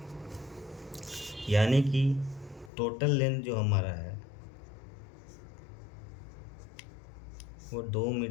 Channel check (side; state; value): right; drops out; at 2.7 s